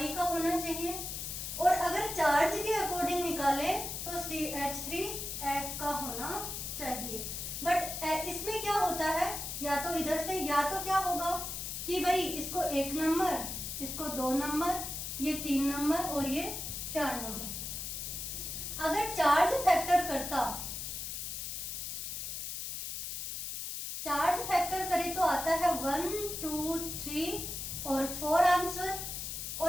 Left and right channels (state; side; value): noise; left; hiss, 5 dB below the sound